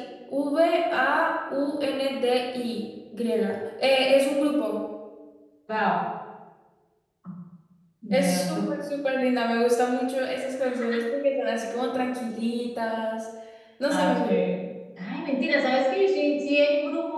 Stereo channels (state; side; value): identical; both; correlation 1.00